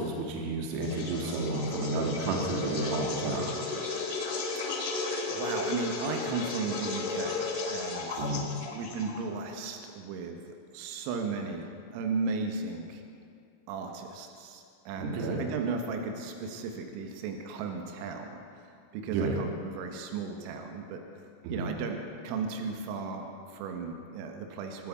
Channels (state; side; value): late; left; 28 ms